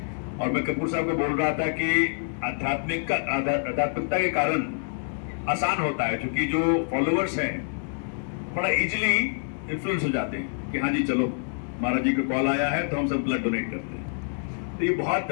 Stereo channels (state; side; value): silent; right; digital silence